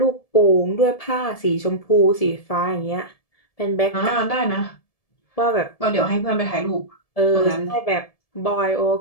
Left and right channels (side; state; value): right; late; 1.7 ms